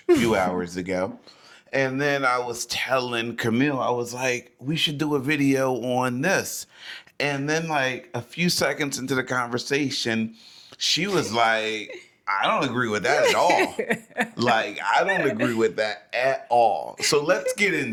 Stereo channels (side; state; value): both; identical; correlation 1.00